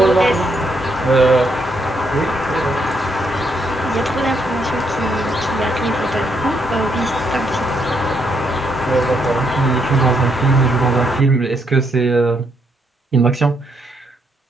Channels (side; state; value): both; normal; correlation 0.75